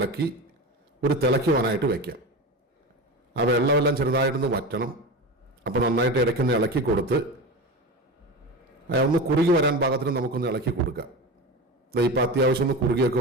ഒരു തിളയ്ക്കുവാനായിട്ട് വയ്ക്കാം. ആ വെള്ളമെല്ലാം ചെറുതായിട്ടൊന്ന് വറ്റണം. അപ്പോൾ നന്നായിട്ട് ഇടയ്ക്കൊന്ന് ഇളക്കി കൊടുത്ത് ഒന്ന് കുറുകി വരാൻ പാകത്തിന് നമുക്കൊന്ന് ഇളക്കി കൊടുക്കാം. ഇപ്പം അത്യാവശ്യം ഒന്ന് കുറുകിയൊക്കെ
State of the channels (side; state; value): both; normal; correlation 0.26